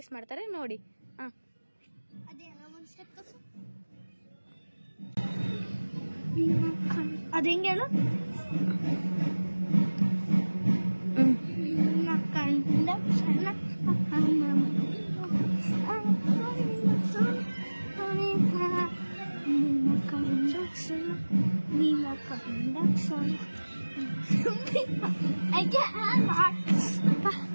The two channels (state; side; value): inverted; both; correlation -1.00